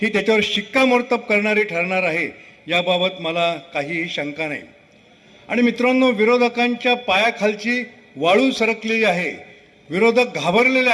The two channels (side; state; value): both; identical; correlation 1.00